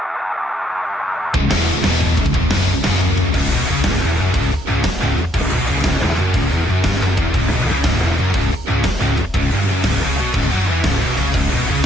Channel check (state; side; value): normal; both; correlation 0.71